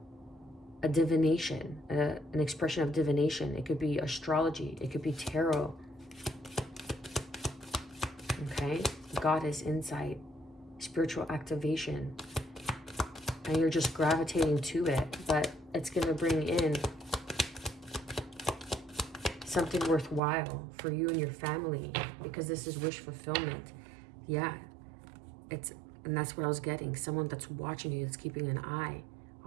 divination, an expression of divination. It could be astrology, it could be tarot. Okay, goddess insight, spiritual activation, and you're just gravitating to it. But it's going to bring in something worthwhile for you and your family, because this is wish fulfillment. Yeah, and that's what I was getting. Someone that's watching you, that's keeping an eye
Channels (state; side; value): drops out; left; at 20.2 s